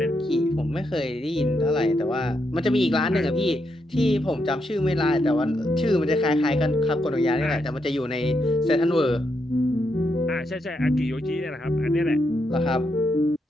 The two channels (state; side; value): normal; both; correlation 0.81